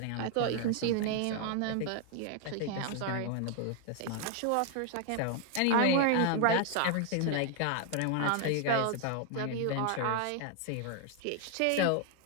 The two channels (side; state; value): both; different; correlation 0.00